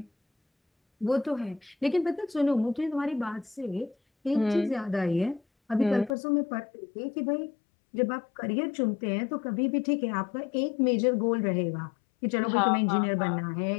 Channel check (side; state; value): right; drops out; at 6.2 s